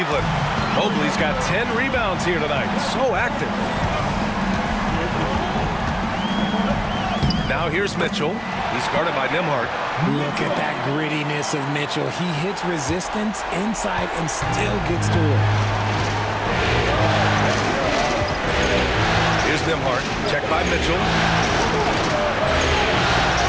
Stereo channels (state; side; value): identical; both; correlation 1.00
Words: Mobley's got 10 rebounds here tonight. So active. Now here's Mitchell. He's guarded by Nimhard. Look at that grittiness of Mitchell. He hits resistance inside and still gets to it. Here's Nimhard. Checked by Mitchell.